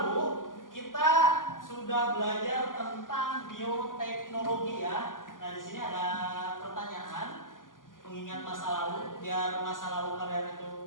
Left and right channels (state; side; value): late; right; 0.89 ms